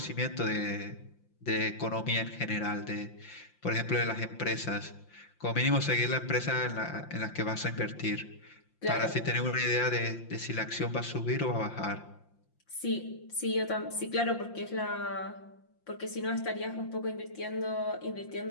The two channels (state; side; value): late; right; 5.8 ms